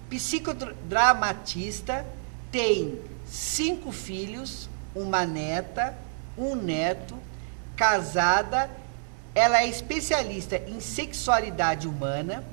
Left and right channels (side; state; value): left; silent; 59 dB below the other